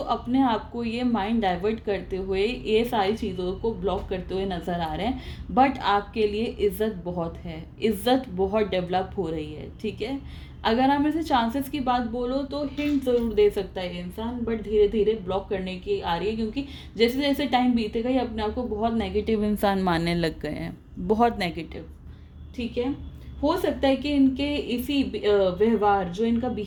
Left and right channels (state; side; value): identical; both; correlation 1.00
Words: अपने आप को ये माइंड डाइवर्ट करते हुए, ये सारी चीज़ों को ब्लॉक करते हुए नज़र आ रहे हैं। बट आपके लिए इज़्ज़त बहुत है, इज़्ज़त बहुत डेवलप हो रही है, ठीक है। अगर आप ऐसे चांसेस की बात बोलो तो हिंट ज़रूर दे सकता है ये इंसान, बट धीरे धीरे ब्लॉक करने की आ रही है, क्योंकि जैसे जैसे टाइम बीतेगा ये अपने आप को बहुत नेगेटिव इंसान मानने लग गए हैं, बहुत नेगेटिव, ठीक है। हो सकता है कि इनके इसी व्यवहार, जो इनका